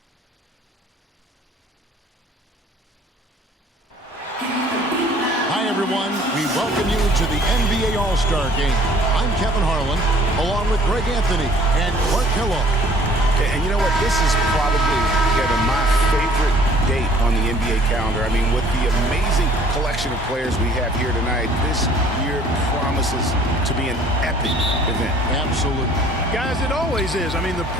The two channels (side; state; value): both; normal; correlation 0.55